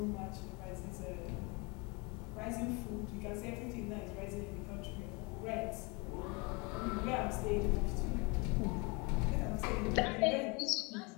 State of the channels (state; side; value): quieter; right; 28.4 dB